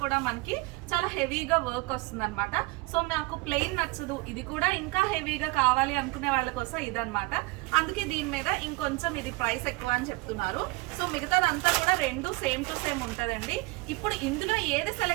కూడా మనకి చాలా హెవీగా వర్క్ వస్తుంది అనమాట. సో నాకు ప్లెయిన్ నచ్చదు, ఇది కూడా ఇంకా హెవీగా కావాలి అనుకునే వాళ్ళ కోసం ఇదన్నమాట. అందుకే దీని మీద ఇంకొంచెం ఇది ప్రైస్ ఎక్కువ అని చెప్తున్నారు. సో మిగతాదంతా కూడా రెండు సేమ్ టు సేమ్ ఉంటుందండి. ఇప్పుడు ఇందులో ఏది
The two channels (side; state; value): left; quieter; 24.2 dB